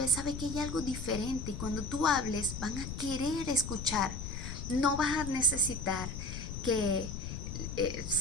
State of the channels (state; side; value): noise; left; rumble, 6 dB below the sound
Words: sabe que hay algo diferente. Y cuando tú hables, van a querer escuchar. No vas a necesitar que